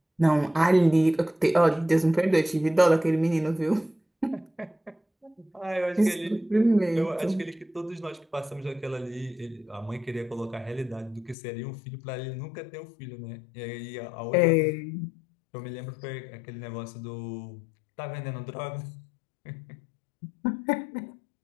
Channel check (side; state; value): right; drops out; at 11.4 s